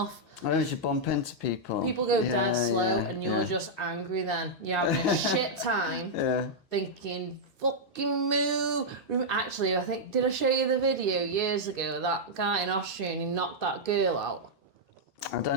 I know you bump into people. People go dead slow, and you're just angry. Then you're having a shit time, thinking fucking move. Actually, I think did I show you the video years ago? That guy in Austria, and he knocked that girl out. I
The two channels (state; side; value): normal; both; correlation -0.06